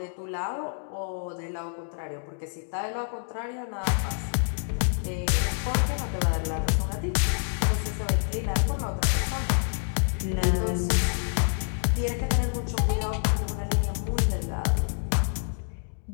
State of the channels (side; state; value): right; silent; digital silence